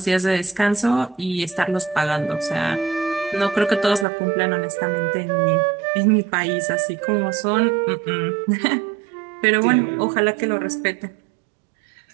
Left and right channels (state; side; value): drops out; left; at 4.0 s